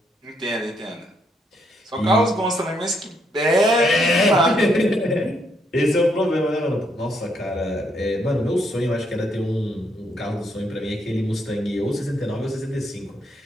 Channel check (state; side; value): normal; both; correlation 0.74